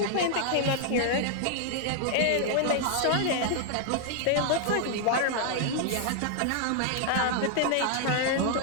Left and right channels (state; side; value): different; both; correlation 0.00